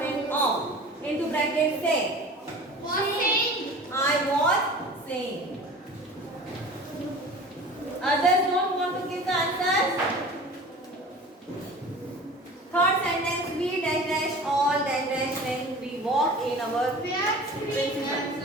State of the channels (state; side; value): normal; both; correlation 0.39